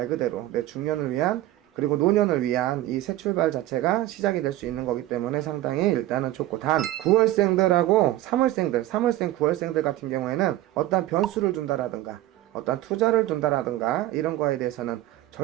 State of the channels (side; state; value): left; quieter; 15.2 dB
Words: 그대로 내 중년을 위한 그리고 노년을 위한 이 새 출발 자체가 시작이 될 수 있는 거기 때문에 상당히 일단은 좋고, 단 9월생들하고 3월생 9월생들 같은 경우에는 어떤 변수를 준다라든가 어떤 투자를 준다라든가 이런 거에 대해서는